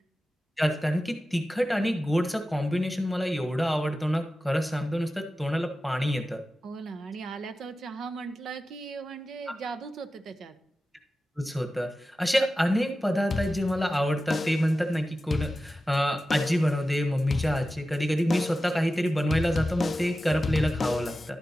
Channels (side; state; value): both; normal; correlation 0.94